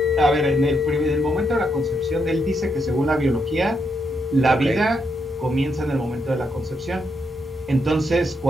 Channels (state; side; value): normal; both; correlation 0.80